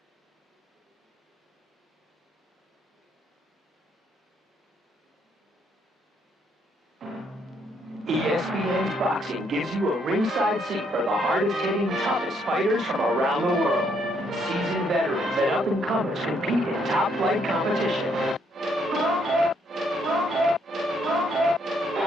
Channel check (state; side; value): normal; both; correlation 0.71